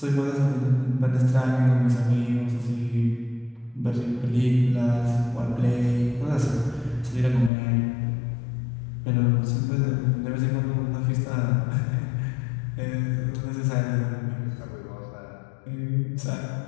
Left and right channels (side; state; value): right; drops out; at 7.5 s